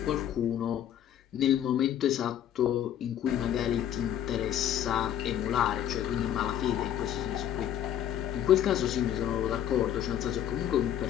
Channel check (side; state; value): right; quieter; 10.6 dB